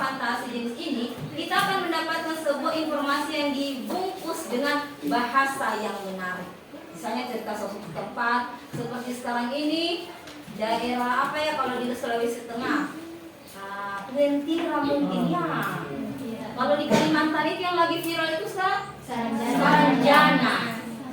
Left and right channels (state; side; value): identical; both; correlation 1.00